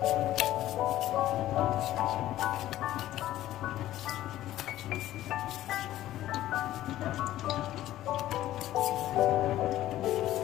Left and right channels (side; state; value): right; quieter; 14.0 dB